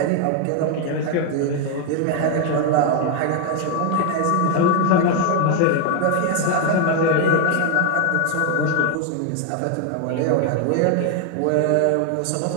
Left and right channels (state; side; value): different; both; correlation 0.01